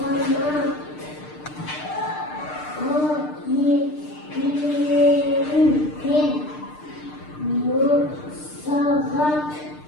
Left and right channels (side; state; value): right; late; 6.6 ms